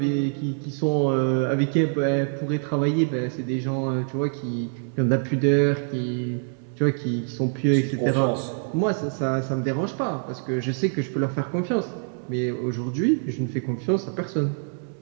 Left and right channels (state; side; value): silent; left; 62 dB below the other